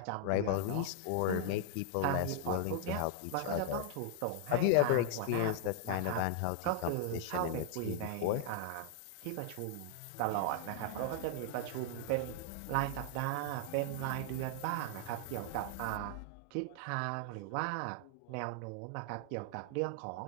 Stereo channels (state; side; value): different; both; correlation 0.00